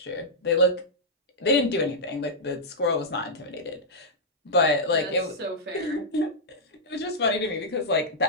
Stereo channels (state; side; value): normal; both; correlation -0.09